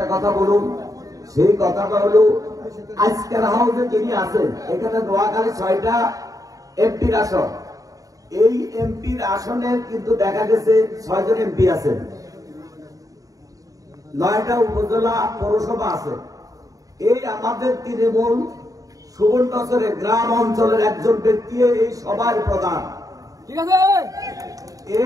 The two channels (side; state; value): left; late; 0.17 ms